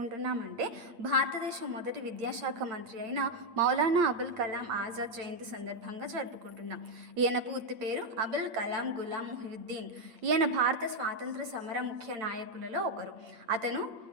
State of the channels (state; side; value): late; left; 8.7 ms